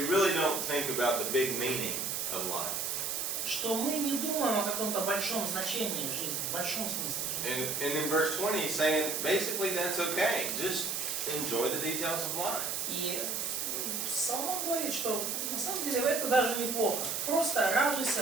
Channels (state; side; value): noise; right; hiss, 1 dB below the sound